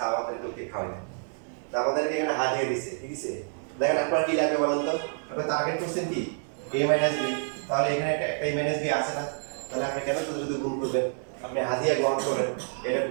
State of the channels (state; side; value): silent; left; 59 dB below the other